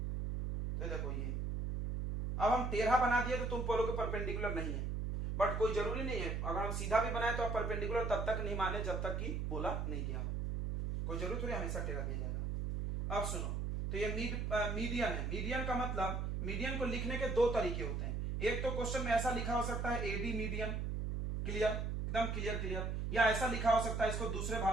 तो देखो ये, अब हम टेढ़ा बना दिए तो तुम बोलोगे परपेंडिकुलर नहीं है, बट कोई जरूरी नहीं है, अगर हम सीधा भी बनाए तो आप परपेंडिकुलर तब तक नहीं माने जब तक कि बोला नहीं गया हो, कोई जरूरी थोड़ी हमेशा टेढ़ा दिया जाएगा। अब सुनो, तो ये मीडियन है। मीडियन का मतलब, मीडियन को लिखने के दो तरीके होते हैं। एक तो क्वेश्चन में ऐसा लिखा हो सकता है एडी मीडियन, क्लियर, एकदम क्लियर क्लियर, या ऐसा लिखा हो सकता है इसको दूसरे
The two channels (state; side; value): noise; right; hum, 1 dB below the sound